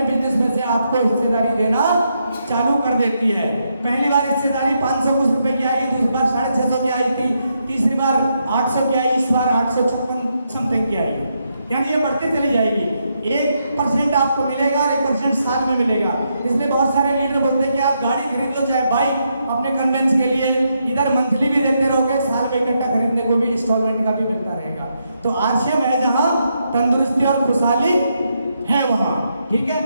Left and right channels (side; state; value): both; inverted; correlation -0.80